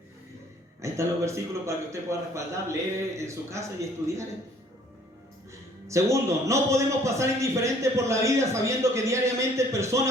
Ahí están los versículos para que usted pueda respaldar, leer en su casa y estudiar. Segundo, no podemos pasar indiferente por la vida sabiendo que diariamente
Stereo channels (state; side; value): normal; both; correlation 0.57